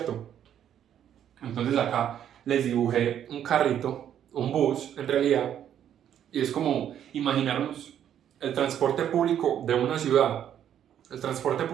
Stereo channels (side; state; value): left; quieter; 9.9 dB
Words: Entonces acá les dibujé un carrito, un bus en realidad, y es como imaginarnos el transporte público de una ciudad. El transporte